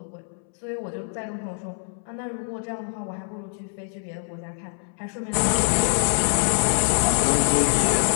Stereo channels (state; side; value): silent; right; 62 dB below the other